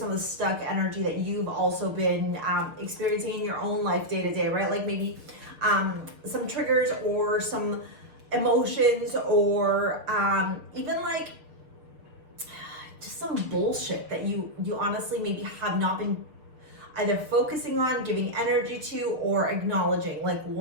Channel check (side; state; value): left; late; 6.5 ms